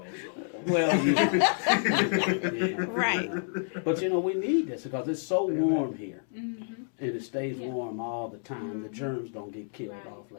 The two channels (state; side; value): silent; right; digital silence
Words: So. Well, right. But we need this because it's so warm here, and it stays warm all the time. The germs don't get killed off